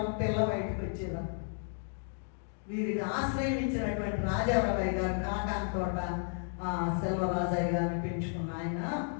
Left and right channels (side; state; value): right; silent; 56 dB below the other